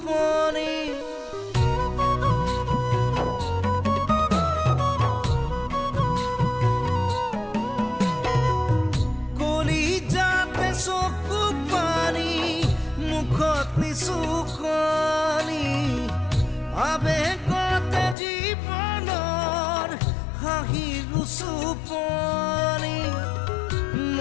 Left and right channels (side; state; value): right; drops out; at 18.2 s